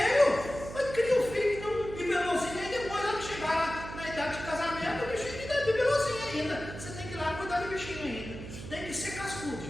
Mas cria um filho bibelozinho, e depois ela chegar na idade de casamento, o bichinho ainda é bibelozinho ainda. Você tem que ir lá cuidar do bichinho ainda. Tem que ser cascudo,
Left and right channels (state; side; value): noise; right; hum, 11 dB below the sound